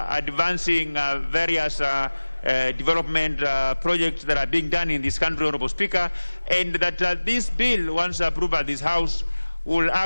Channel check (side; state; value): both; inverted; correlation -1.00